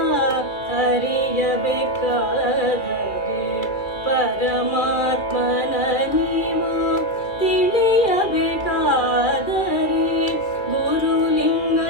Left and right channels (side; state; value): right; late; 2.2 ms